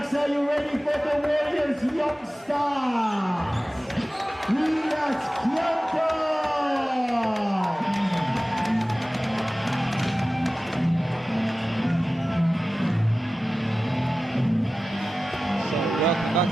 are you ready for the Warriors? Youngstaaaaas. Relax, So welcome back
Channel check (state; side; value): normal; both; correlation 0.96